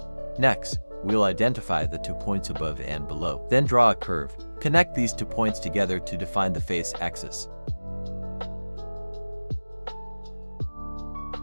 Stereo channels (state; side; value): inverted; both; correlation -1.00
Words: Next, we'll identify the 2 points above and below. Then draw a curve. Connect these 2 points together to define the face axis.